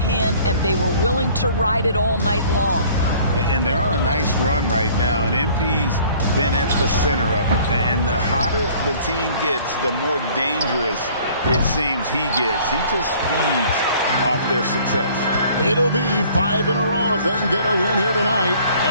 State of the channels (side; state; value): both; inverted; correlation -0.54